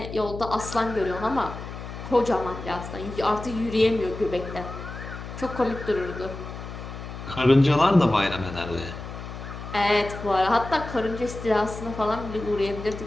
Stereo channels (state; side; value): noise; left; hum, 10 dB below the sound